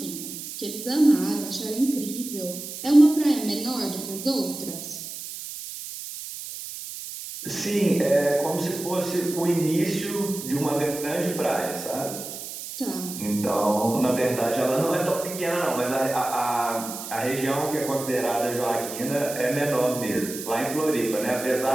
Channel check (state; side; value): noise; right; hiss, 9 dB below the sound